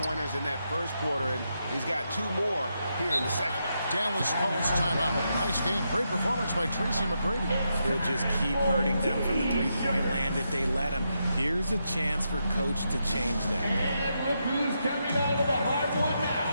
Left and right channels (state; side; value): inverted; both; correlation -0.83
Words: in that first quarter, and he's got 2 more here in the second. Dallas calls timeout. Nice game. Great performance by Tracy McGrady. He'll just keep hurting them from the three-point land if they let him. Here's a chance for Coach to change that. And look who's coming onto the hardwood